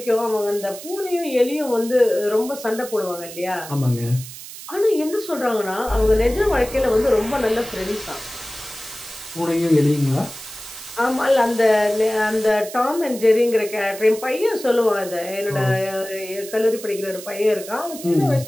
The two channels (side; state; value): right; noise; hiss, 13 dB below the sound